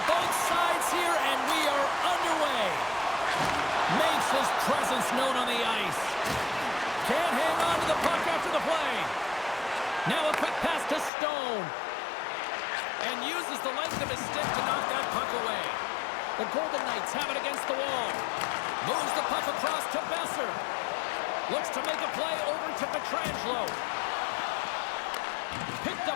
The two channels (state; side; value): drops out; right; at 11.1 s